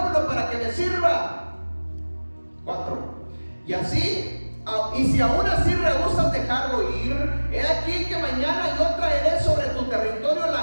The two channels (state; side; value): inverted; both; correlation -1.00